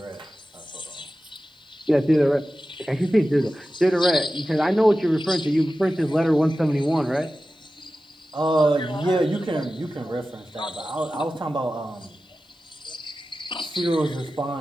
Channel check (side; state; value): both; normal; correlation 0.94